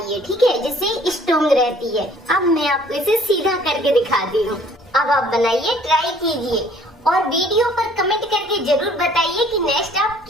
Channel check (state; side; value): normal; both; correlation 0.56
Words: ठीक है, जिससे स्ट्रॉन्ग रहती है। अब मैं आपको इसे सीधा करके दिखाती हूँ। अब आप बनाइए, ट्राई कीजिए और वीडियो पर कमेंट करके जरूर बताइए कि नेक्स्ट आप